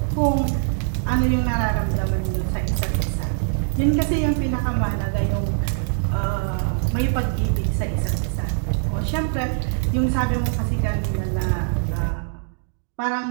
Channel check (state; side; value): silent; left; digital silence